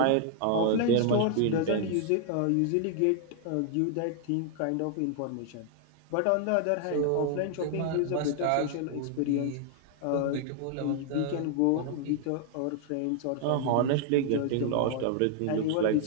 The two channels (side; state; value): both; different; correlation 0.00